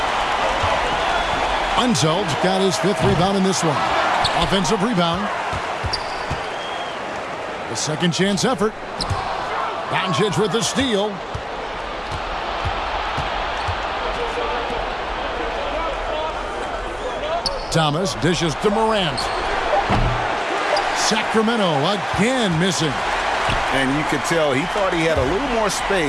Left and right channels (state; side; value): identical; both; correlation 1.00